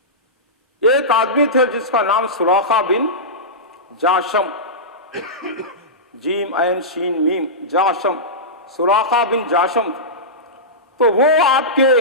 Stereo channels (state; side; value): normal; both; correlation -0.16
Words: ایک آدمی تھے جس کا نام سراقہ بن جاشم، جیم عین شین میم، جاشم، سراقہ بن جاشم. تو وہ آپ کے